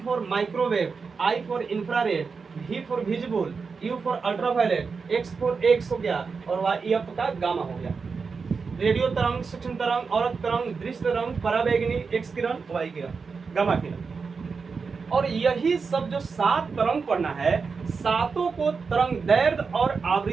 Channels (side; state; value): left; quieter; 5.1 dB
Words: for microwave, I for infrared, V for visible, U for ultraviolet, X for x हो गया, और Y आपका गामा हो गया। रेडियो तरंग, सूक्ष्म तरंग, औरत तरंग, दृश्य तरंग, पराबैंगनी, X किरण, Y किरण, गामा किरण। और यही सब जो 7 तरंग पढ़ना है, सातों को तरंग दैर्घ्य और